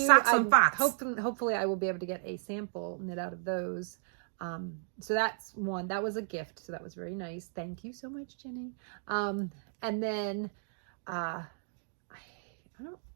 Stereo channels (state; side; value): silent; left; digital silence